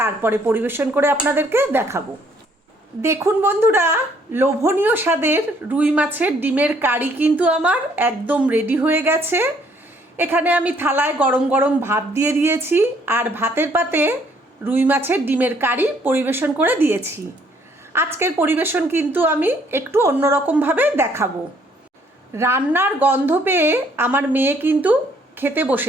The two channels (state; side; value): normal; both; correlation 0.65